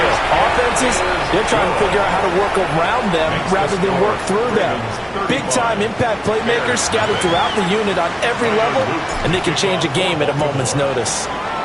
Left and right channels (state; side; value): identical; both; correlation 1.00